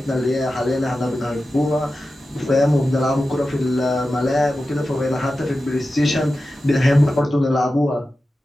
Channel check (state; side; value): normal; both; correlation 0.93